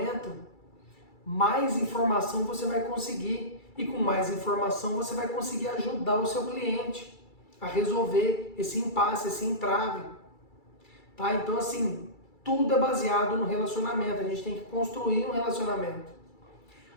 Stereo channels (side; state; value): right; late; 2.3 ms